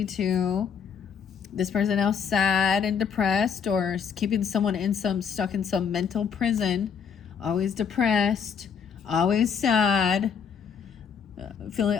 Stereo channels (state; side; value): quieter; right; 6.9 dB